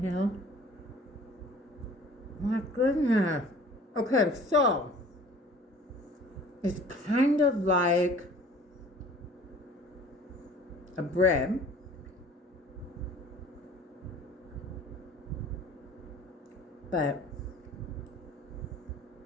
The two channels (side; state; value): both; normal; correlation 0.48